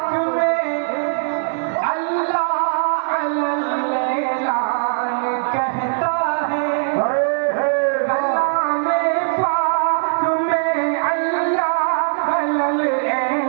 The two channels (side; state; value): left; silent; 59 dB below the other